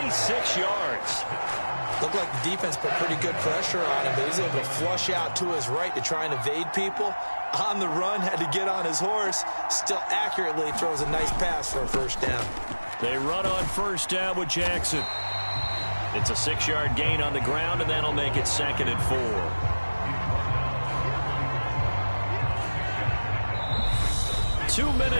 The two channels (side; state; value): both; inverted; correlation -1.00